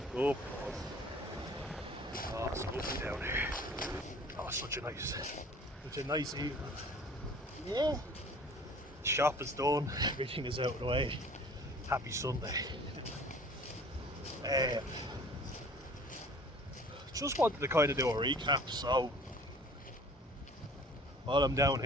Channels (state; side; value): normal; both; correlation 0.49